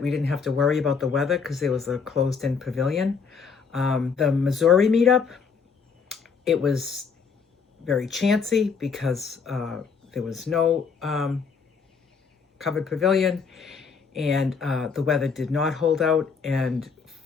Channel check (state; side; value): quieter; right; 5.6 dB